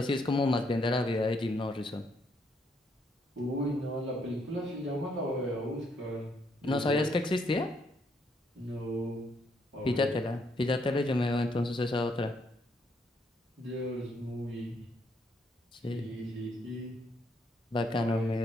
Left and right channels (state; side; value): normal; both; correlation 0.73